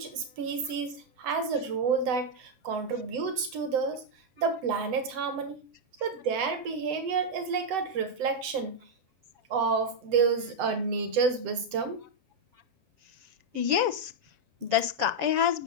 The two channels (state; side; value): late; left; 7.9 ms